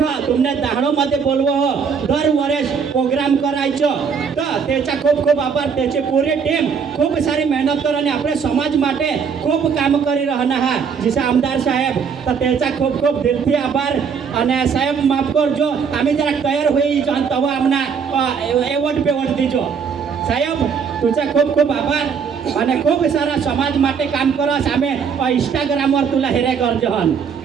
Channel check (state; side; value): quieter; left; 6.4 dB